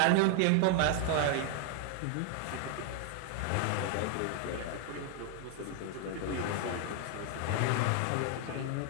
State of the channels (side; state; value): both; different; correlation 0.00